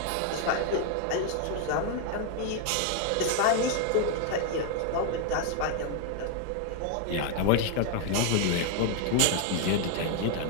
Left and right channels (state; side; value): different; both; correlation 0.00